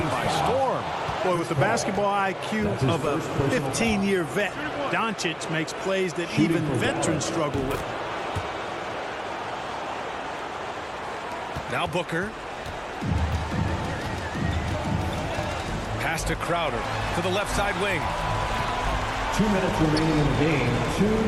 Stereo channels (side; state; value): both; identical; correlation 1.00